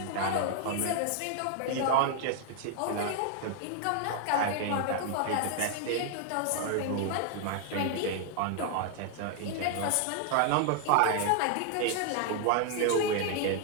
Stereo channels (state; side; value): different; both; correlation 0.00